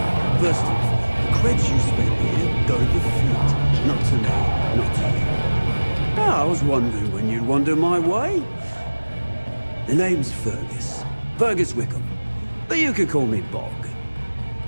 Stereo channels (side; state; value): both; inverted; correlation -1.00